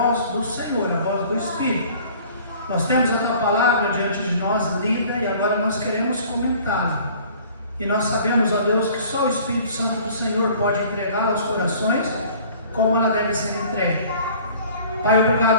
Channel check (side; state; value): both; inverted; correlation -0.50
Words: do Senhor, a voz do Espírito. Nós temos a Tua palavra diante de nós lida e agora nós queremos comentá-la. E nós sabemos, ó Deus, que só o Espírito Santo do Senhor pode entregá-la aos corações como ela deve ser entregue. Pai,